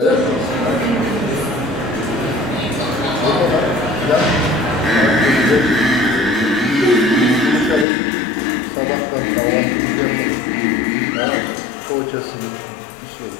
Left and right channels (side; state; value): right; drops out; at 7.9 s